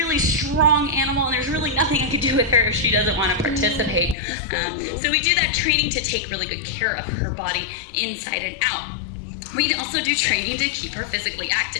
strong animal, and there's really nothing I could do with her if she doesn't want to participate. So we do that training to take really good care of her body inside and out. We also do training to keep her physically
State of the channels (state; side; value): drops out; right; at 4.2 s